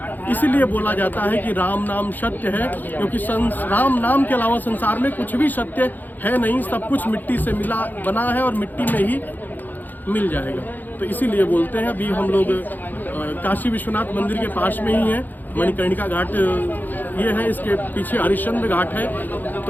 इसीलिए बोला जाता है कि राम नाम सत्य है, क्योंकि राम नाम के अलावा संसार में कुछ भी सत्य है नहीं। सब कुछ मिट्टी से बना है और मिट्टी में ही मिल जाएगा। तो इसीलिए बोलते हैं। अभी हम लोग काशी विश्वनाथ मंदिर के पास में ही हैं। मणिकर्णिका घाट ये है, इसके पीछे हरिश्चंद्र घाट है।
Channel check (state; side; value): late; right; 0.086 ms